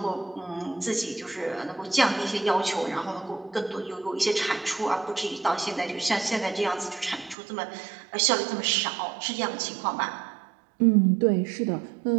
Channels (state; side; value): drops out; left; at 7.4 s